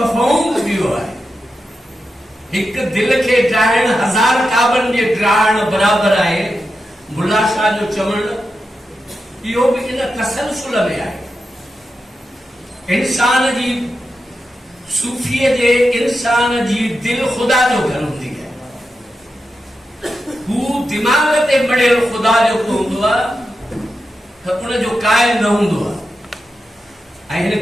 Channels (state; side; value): normal; both; correlation 0.89